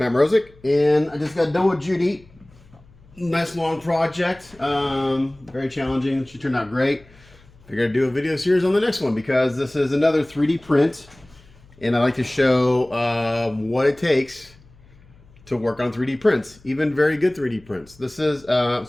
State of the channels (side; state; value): left; noise; hum, 27 dB below the sound